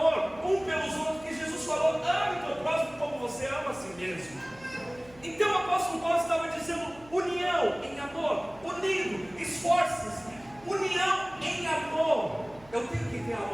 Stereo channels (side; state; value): right; noise; hum, 24 dB below the sound